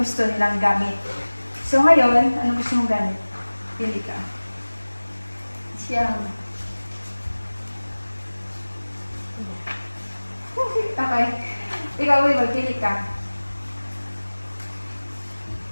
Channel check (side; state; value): both; inverted; correlation -1.00